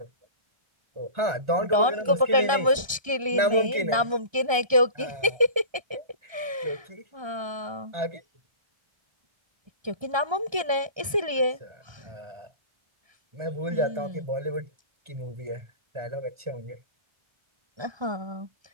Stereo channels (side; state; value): left; late; 1.3 ms